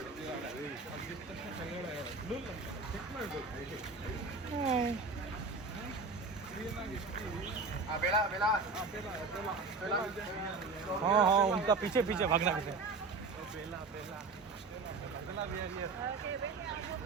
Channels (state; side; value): quieter; left; 4.1 dB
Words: हाँ हाँ उनका पीछे पीछे भागना पीछे